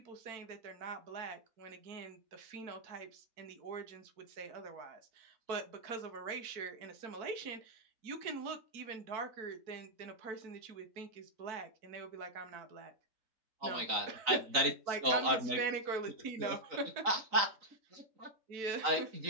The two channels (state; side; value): late; left; 3.9 ms